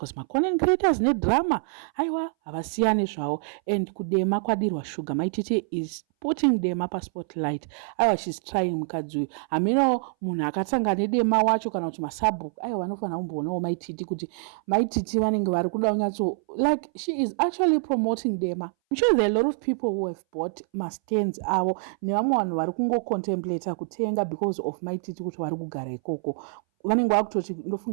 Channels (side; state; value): left; silent; 60 dB below the other